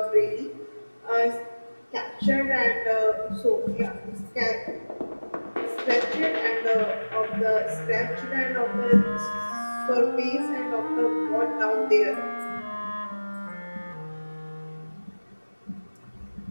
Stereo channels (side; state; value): both; inverted; correlation -1.00